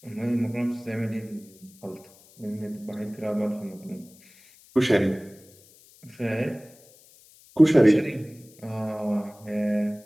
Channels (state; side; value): noise; left; hiss, 26 dB below the sound